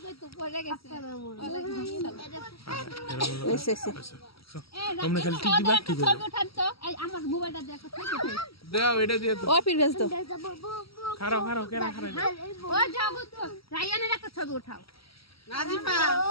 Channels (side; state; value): right; late; 0.75 ms